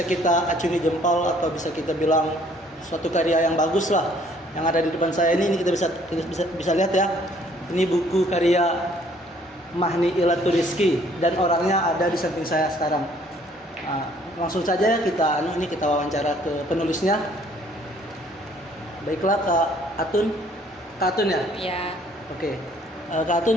kita acungi jempol atau bisa kita bilang suatu karya yang bagus lah. Yang ada di depan saya ini kita bisa lihat ya. Ini buku karya Mahni Ilatul Rizki dan orangnya ada di samping saya sekarang. Nah, langsung saja kita wawancara ke penulisnya. Baiklah Kak Atun ya? Iya. Oke. Kak Atun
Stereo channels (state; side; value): normal; both; correlation 0.60